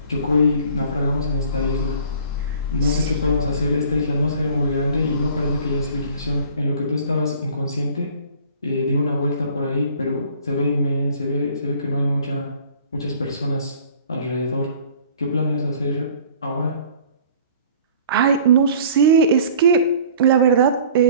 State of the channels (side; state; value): both; inverted; correlation -0.49